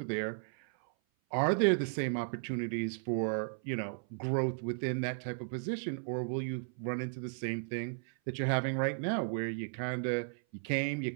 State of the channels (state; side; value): silent; left; 54 dB below the other